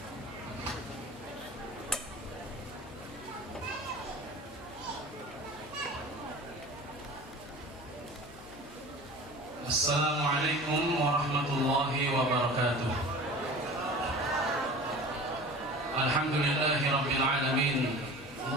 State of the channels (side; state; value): left; noise; hum, 19 dB below the sound